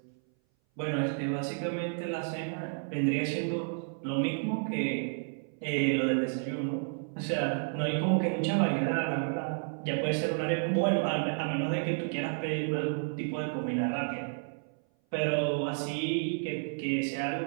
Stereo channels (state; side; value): silent; left; 57 dB below the other